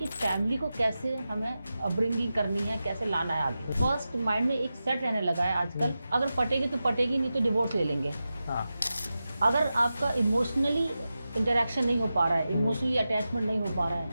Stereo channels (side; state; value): both; inverted; correlation -0.92